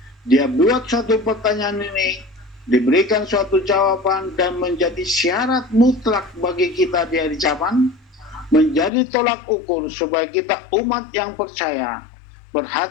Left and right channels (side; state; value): right; drops out; at 8.9 s